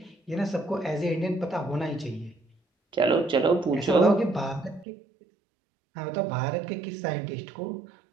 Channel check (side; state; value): left; drops out; at 4.9 s